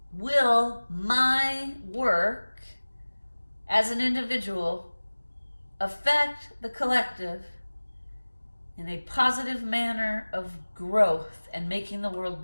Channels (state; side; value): inverted; both; correlation -1.00